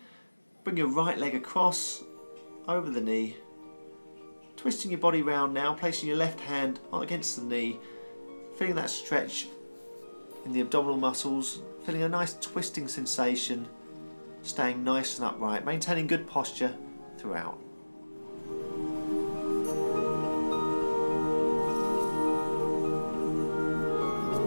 Bring your right leg across, over the knee. Twisting your body round now, placing your left hand against the knee. Feeling that stretch in the abdominal muscles. Feeling a nice twisting sensation. Staying nice and upright, maintaining good posture throughout.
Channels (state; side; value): inverted; both; correlation -1.00